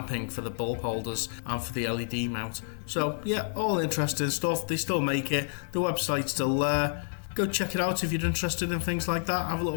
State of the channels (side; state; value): right; silent; digital silence